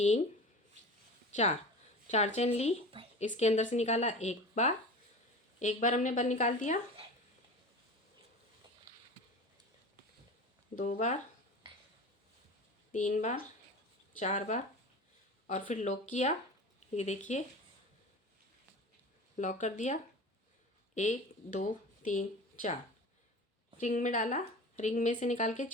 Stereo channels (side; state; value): both; normal; correlation 0.34